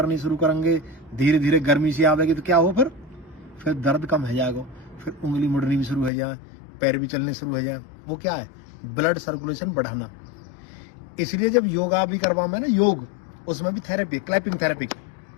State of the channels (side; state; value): right; drops out; at 6.1 s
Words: धीरे धीरे गर्मी सी आवेगी, तो क्या हो, फिर दर्द कम हो जाएगा, फिर उंगली मुड़नी भी शुरू हो जाए, पैर भी चलने शुरू हो जाए। वो क्या है, ब्लड सर्कुलेशन बढ़ाना। इसलिए जब योगा भी करवा में ना, योग, उसमें भी थेरेपी, क्लैपिंग थेरेपी।